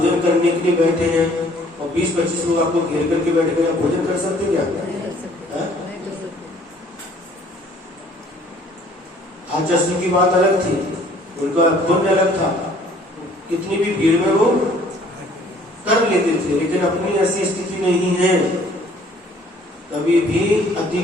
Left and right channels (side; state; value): both; normal; correlation 0.57